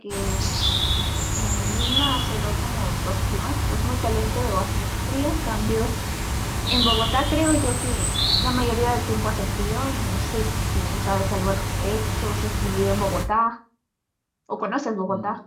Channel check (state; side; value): identical; both; correlation 1.00